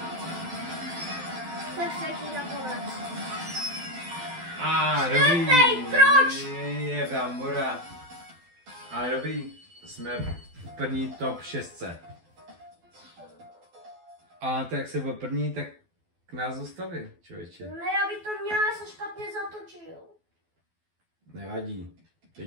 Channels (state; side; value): late; left; 12 ms